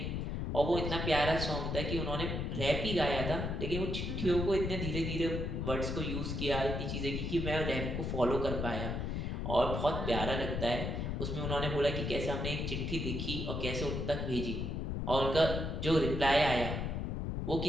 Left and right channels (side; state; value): left; noise; rumble, 2 dB below the sound